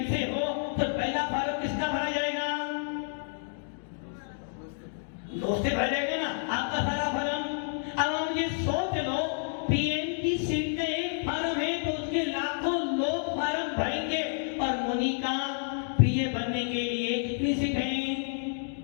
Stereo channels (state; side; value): silent; right; digital silence